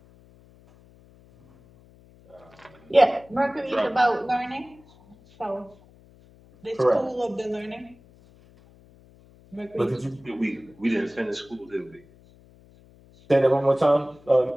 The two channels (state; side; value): noise; left; hum, 27 dB below the sound